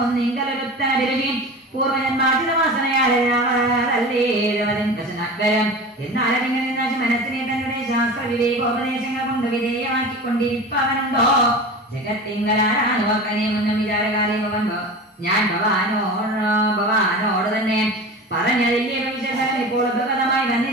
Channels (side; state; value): both; normal; correlation 0.32